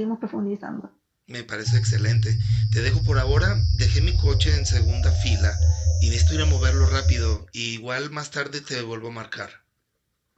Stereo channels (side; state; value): both; identical; correlation 1.00